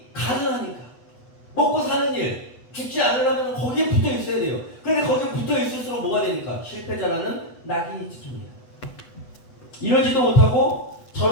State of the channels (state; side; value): late; right; 8.1 ms